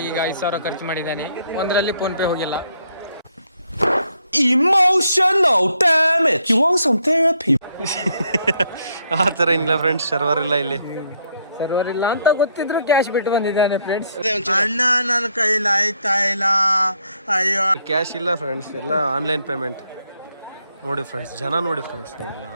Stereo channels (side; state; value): both; inverted; correlation -0.71